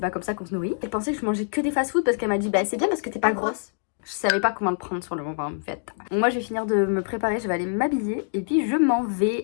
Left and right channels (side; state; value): right; silent; digital silence